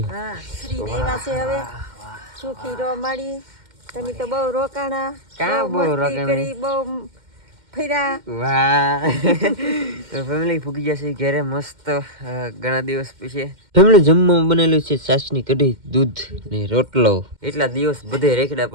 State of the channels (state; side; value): late; left; 2.1 ms